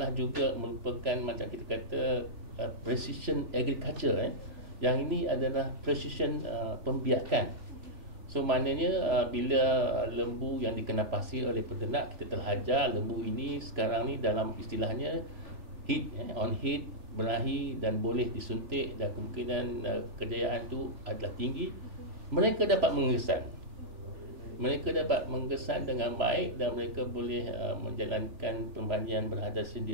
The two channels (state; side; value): late; left; 3.4 ms